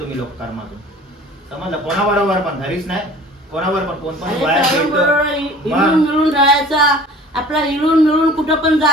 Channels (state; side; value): normal; both; correlation 0.46